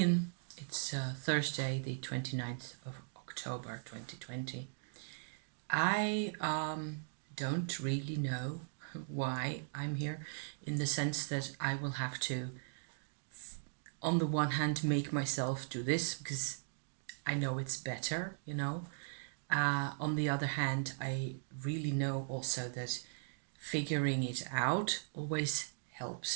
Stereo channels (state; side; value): silent; left; digital silence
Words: It's Thursday, the 29th of October 2020. I don't really know why I'm here, in the sense that I will have to, on the one hand, make myself do this because I know it's better. On the other hand, I really know also that figuring it out always